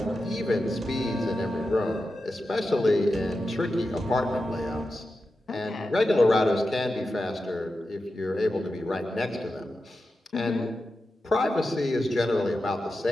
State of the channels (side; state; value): both; normal; correlation 0.91